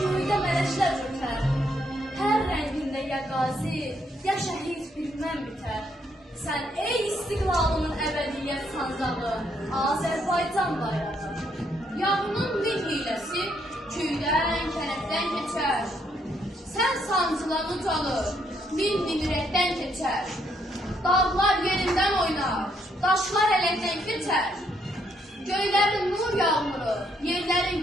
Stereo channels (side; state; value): both; normal; correlation 0.73